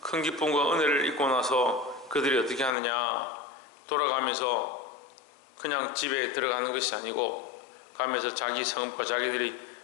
큰 기쁨과 은혜를 입고 나서 그들이 어떻게 하느냐, 돌아가면서 그냥 집에 들어가는 것이 아니고 가면서 자기 성읍과 자기들이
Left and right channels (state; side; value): drops out; right; at 2.8 s